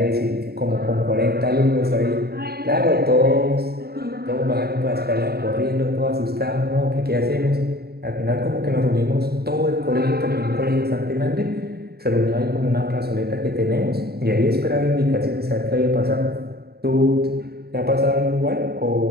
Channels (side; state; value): left; late; 0.46 ms